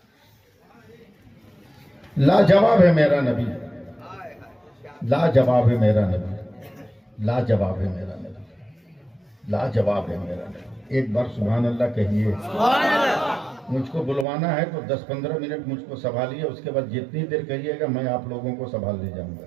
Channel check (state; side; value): drops out; left; at 14.2 s